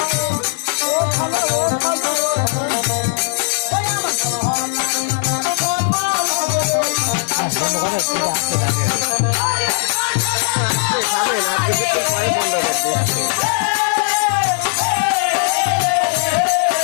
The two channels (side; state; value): right; silent; digital silence